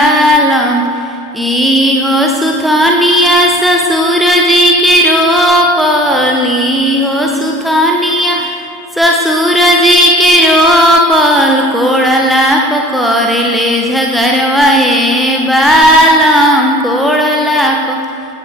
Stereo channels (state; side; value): normal; both; correlation 0.48